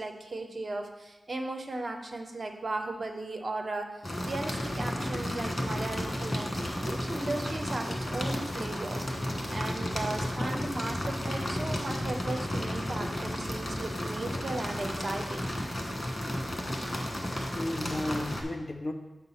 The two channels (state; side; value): normal; both; correlation 0.95